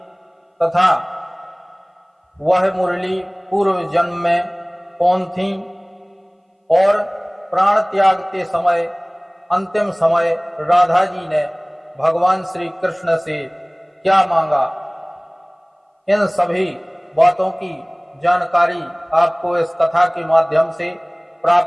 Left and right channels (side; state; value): both; identical; correlation 1.00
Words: तथा वह मुरली पूर्व जन्म में कौन थी और प्राण त्याग के समय अंतिम समय राधा जी ने भगवान श्री कृष्ण से क्या मांगा। इन सभी बातों की जानकारी आपको इस कथा के माध्यम से